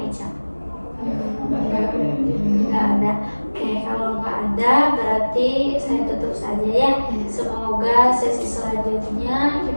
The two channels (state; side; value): inverted; both; correlation -1.00